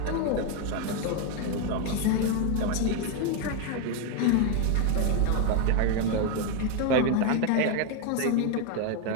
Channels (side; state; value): both; different; correlation 0.01